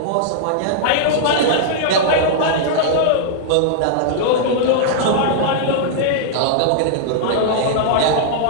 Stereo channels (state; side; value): different; both; correlation -0.01